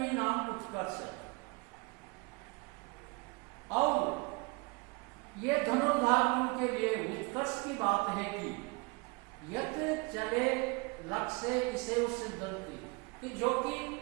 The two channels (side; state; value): left; quieter; 27.8 dB